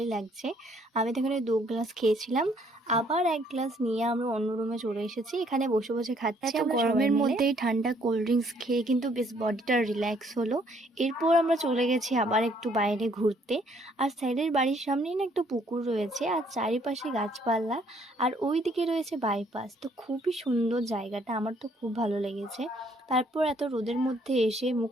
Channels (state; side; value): normal; both; correlation 0.65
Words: লাগছে। আমি তো এখানে 2 গ্লাস খেয়েছিলাম, আবার 1 গ্লাস নিয়ে আমরা অন্য রুমে চলে এসেছি। এখানে বসে বসে খাচ্ছি। এত গরমের মধ্যেই ঠান্ডা কোল্ড ড্রিঙ্কস খেয়ে কিন্তু বেশ বডিটা রিল্যাক্স হলো। এরপর আমরা চলে গেছি আবার একটু বাইরে ঘুরতে। আর স্যারের বাড়ির সামনেই না একটা পুকুর রয়েছে, আর চারিপাশে গাছপালা, আর ওই দিকে রয়েছে বাইপাস। তো খুবই সুন্দর জায়গাটা, আমার তো খুব ভালো লেগেছে। তারপর এত রোদের মধ্যে এসে